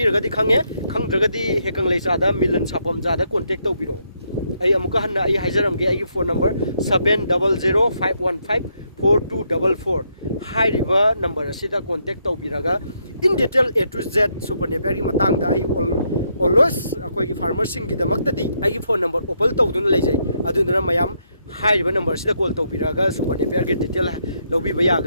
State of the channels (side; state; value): both; inverted; correlation -0.77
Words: खंगे खंद्रगदी हेकंग लेचादा मिलन सापम जादा कांटेक्ट तौबिरो आई अमुका हन्ना आई हाइजरमगे आई फोन नंबर 7005154244 हाइरिबा नंबर असिदा कांटेक्ट तौबिरगा in detail A to Z super Napier की मतंगदा आई ऑलवेज अखोइगी फार्मर सिंग की दमक्तदी आई फोन नंबर ओपन तौदुना लेजै अदुना मयाम हाइरिबा नंबर सिदा कॉल तौबिरगा सुपर नेपियर की डिटेल लौबिबा